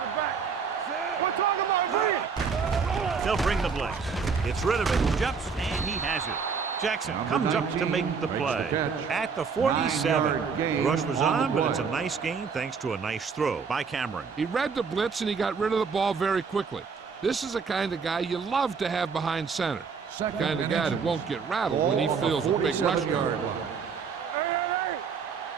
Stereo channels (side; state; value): left; quieter; 5.7 dB